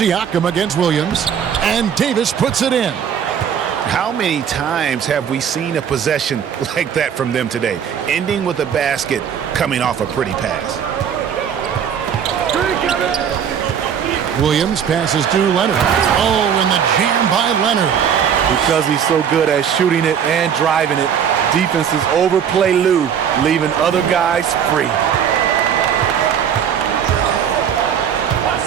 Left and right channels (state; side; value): quieter; left; 8.1 dB